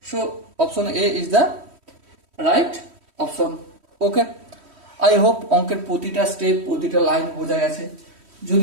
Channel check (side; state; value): left; late; 3.1 ms